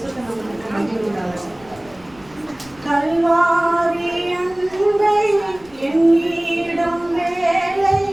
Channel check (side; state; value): left; noise; rumble, 25 dB below the sound